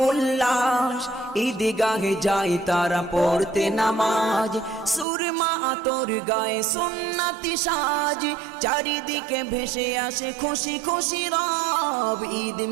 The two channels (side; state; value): left; drops out; at 5.1 s